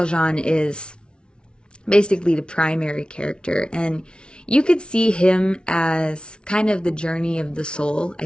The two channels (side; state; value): right; late; 0.056 ms